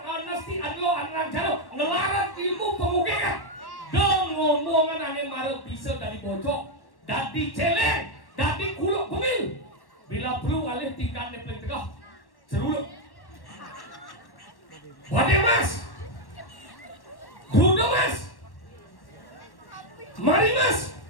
anesti adlo anang jalo ngelarang ilmu pemukiman. Ngomongan ane marah bisa dari bojok, dari celeng, dari kuluk pemil. Bila perlu alih tingkat neplek tegah, seruluk. Wade mas, Dudo mas, Mari mas,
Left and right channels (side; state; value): right; late; 1.1 ms